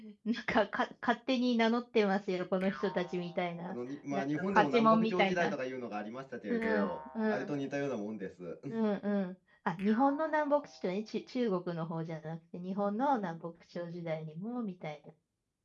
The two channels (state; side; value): identical; both; correlation 1.00